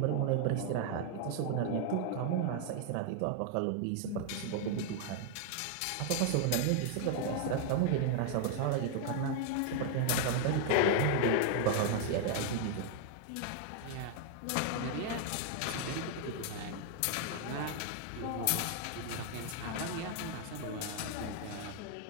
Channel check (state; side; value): different; both; correlation 0.00